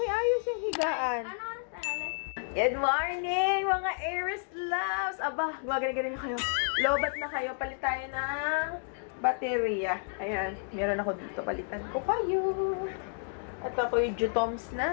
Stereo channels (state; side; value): silent; right; 57 dB below the other